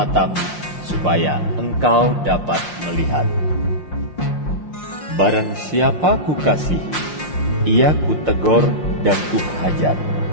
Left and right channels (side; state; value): right; late; 5.7 ms